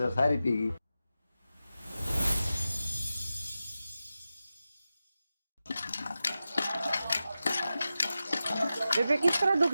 सारी पी गई। बेबे किस तरह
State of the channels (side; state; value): both; inverted; correlation -0.92